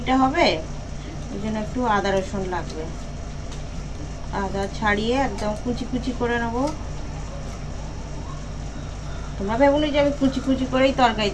হবে, ওই জন্য একটু আদা রসুন লাগবে। আদা ছাড়িয়ে একদম কুচি কুচি করে নেবো। তোমরা ভেবুনি যে আমি কুচি কুচি করেই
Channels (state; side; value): identical; both; correlation 1.00